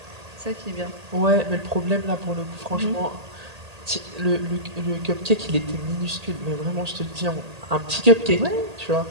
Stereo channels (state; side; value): late; left; 1.8 ms